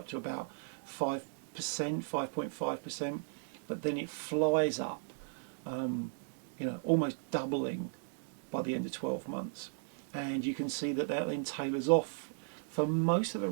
to about 5%, 5.5%, but then it flies up, you know, almost doubling by the end of 12 months. And you can see that that then tailors off for most of the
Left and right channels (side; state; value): left; silent; digital silence